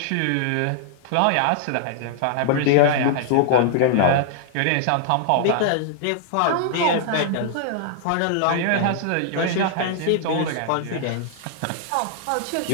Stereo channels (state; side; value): different; both; correlation -0.01